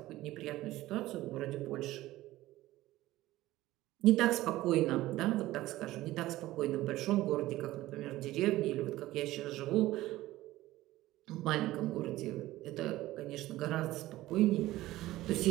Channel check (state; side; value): quieter; left; 16.5 dB